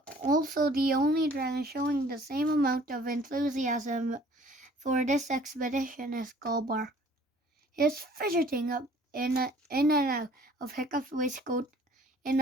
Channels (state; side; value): normal; both; correlation 0.54